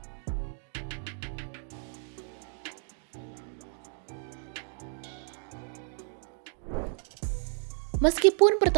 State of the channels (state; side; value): silent; left; 55 dB below the other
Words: memberikan satu kepastian terhadap Insanul seperti apa nanti ke depannya. Meskipun